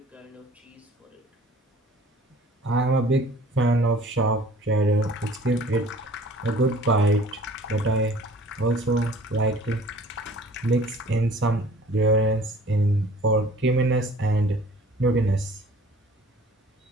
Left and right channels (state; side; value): normal; both; correlation 0.50